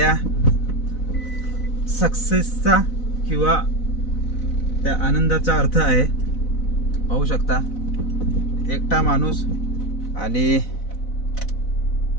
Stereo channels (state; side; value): late; right; 4.0 ms